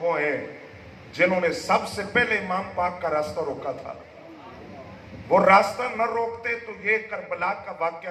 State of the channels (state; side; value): identical; both; correlation 1.00